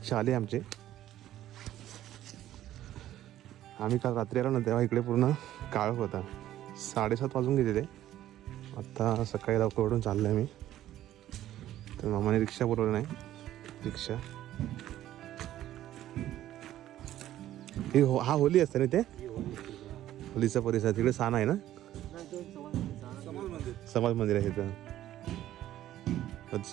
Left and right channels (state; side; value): quieter; left; 13.0 dB